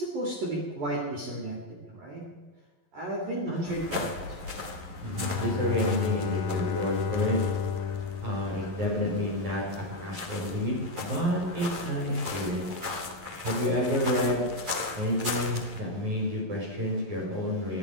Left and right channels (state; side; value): late; left; 11 ms